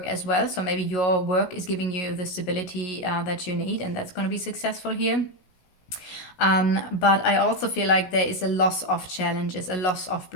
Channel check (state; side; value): late; right; 16 ms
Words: as well, so maybe your work is giving you the stability that you need, and that's going to be successful here. But I also feel like there is a loss of challenges, a loss of